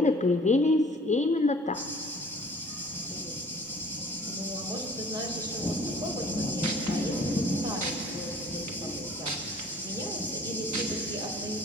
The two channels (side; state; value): both; normal; correlation 0.51